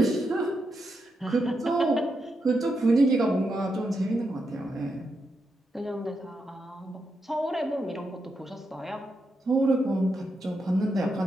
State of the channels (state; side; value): normal; both; correlation 0.84